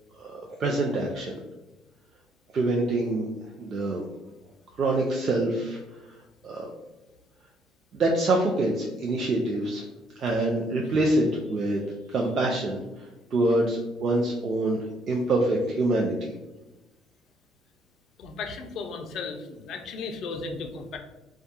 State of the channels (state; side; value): normal; both; correlation 0.68